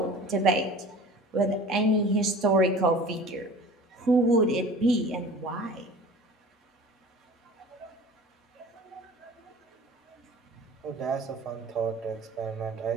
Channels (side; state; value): both; normal; correlation 0.42